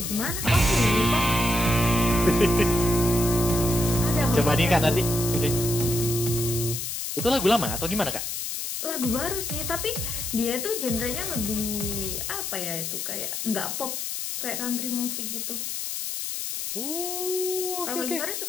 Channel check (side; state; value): left; noise; hiss, 4 dB below the sound